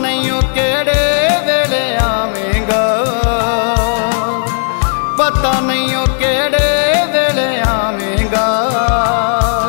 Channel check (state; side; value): silent; right; digital silence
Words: हो केड़े वेले आवेंगा, पता नहीं हो केड़े वेले आवेंगा।